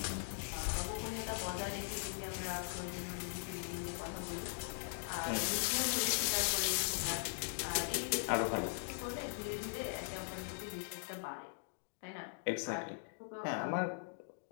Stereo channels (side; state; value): right; silent; digital silence